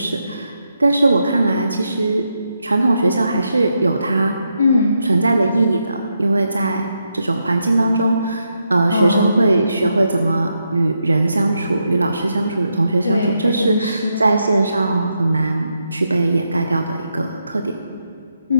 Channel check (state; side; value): inverted; both; correlation -0.83